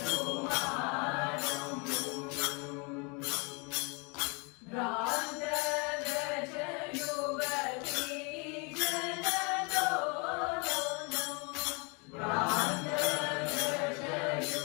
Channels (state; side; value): quieter; right; 32.2 dB